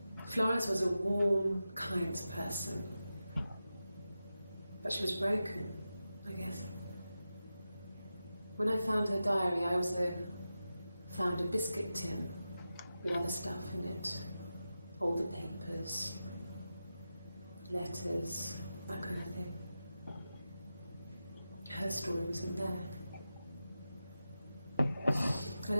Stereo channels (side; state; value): both; inverted; correlation -0.92